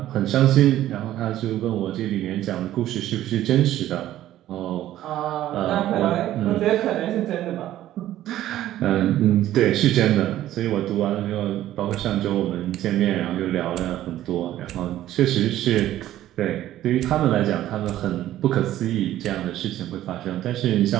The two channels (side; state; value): left; quieter; 13.4 dB